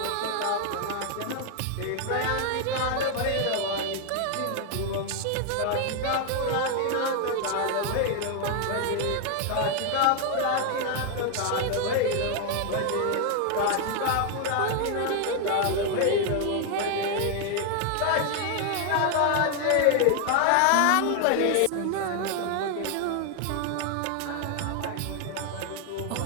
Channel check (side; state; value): both; different; correlation 0.00